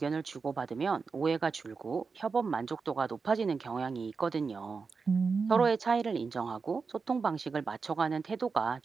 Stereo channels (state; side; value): quieter; left; 4.9 dB